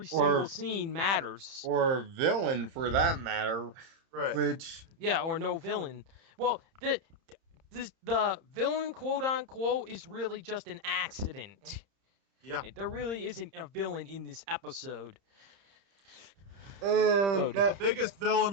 single or scene matters. villain for that matter. Right. Which Yeah, or no villain. Well, the villain, quote unquote, is really just an accident. Yeah. There really isn't a villain in this episode. And The biggest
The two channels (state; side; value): late; left; 30 ms